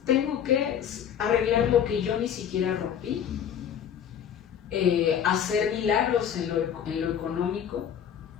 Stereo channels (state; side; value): quieter; right; 8.8 dB